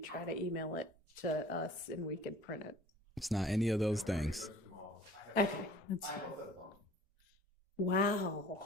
to email it to us and we could print it. It's not any of those things. Okay. That's fine.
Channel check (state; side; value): normal; both; correlation 0.49